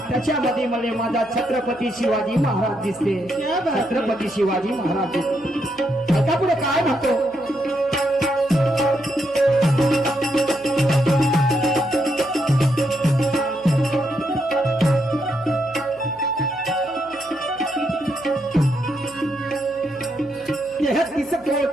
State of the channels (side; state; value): right; noise; hum, 27 dB below the sound